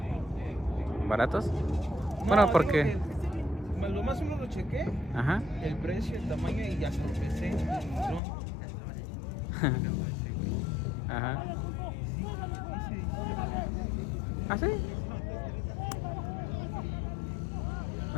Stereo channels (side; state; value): right; drops out; at 8.2 s